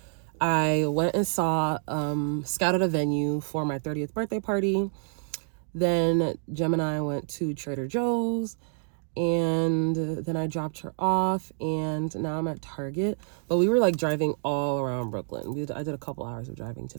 I went and scouted a venue for my 30th birthday party. Then Jem and I went to Trader Joe's, and then I dropped her off, and now I'm at Target. But we were like driving all around Brooklyn. I did a couple hours of driving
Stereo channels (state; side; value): silent; left; 59 dB below the other